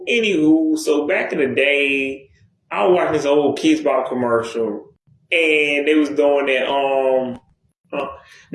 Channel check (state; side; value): identical; both; correlation 1.00